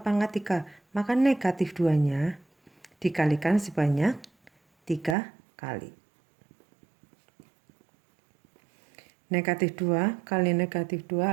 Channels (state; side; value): drops out; left; at 5.2 s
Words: pangkat 3. Maka negatif 2-nya dikalikan sebanyak 3 kali. Negatif 2 kali negatif